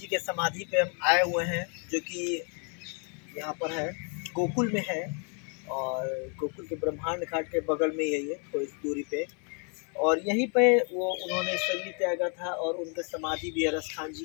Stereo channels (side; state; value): right; quieter; 39.3 dB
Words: के समाधि पे हम आए हुए हैं, जो कि यहाँ पर है, गोकुल में है। और गोकुल के ब्रह्मांड घाट के बगल में ही है ये, थोड़ी सी दूरी पे। और यहीं पे वो उन्होंने शरीर त्यागा था और उनका समाधि भी है रसखान जी